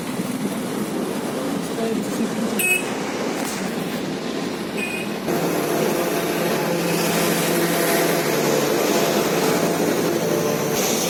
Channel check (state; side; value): identical; both; correlation 1.00